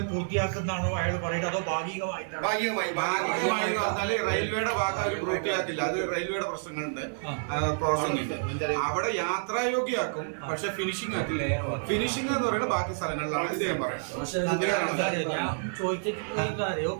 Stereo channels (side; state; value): left; silent; digital silence